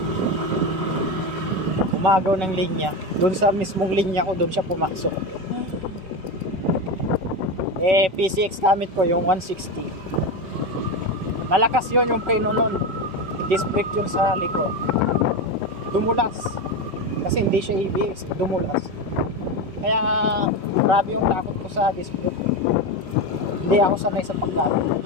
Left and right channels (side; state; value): left; late; 5.3 ms